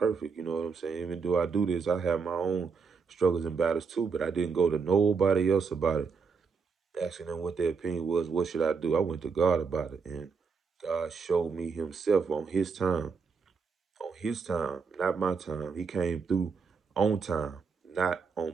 You know what I'm saying? Even though I do this, I have my own struggles and battles too. But I didn't go to nobody else about it, asking them what their opinion was. What should I do? I went to God about it, and God showed me Himself on His time. On His time, not my time. He came through on time, not on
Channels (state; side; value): quieter; left; 5.4 dB